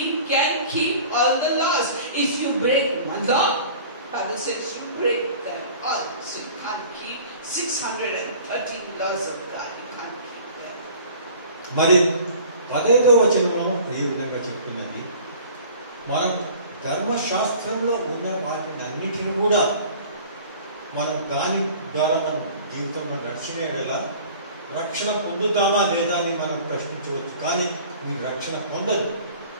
can keep all the laws. If you break one law, Bible says you break them all. So you can't keep 613 laws of God. You can't keep them. మరి 15వ వచనము ఈ విధంగా చెప్తున్నది, మనం ధర్మశాస్త్రంలో ఉన్న వాటిని అన్నిటిని కూడా మనం దాని ద్వారా మనం జీవితంలో నడిచిన ఎడలా రక్షణ పొందుతామా లేదా అని మనం ప్రశ్నించవచ్చు. కానీ మీరు రక్షణ పొందదు.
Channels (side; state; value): both; inverted; correlation -0.46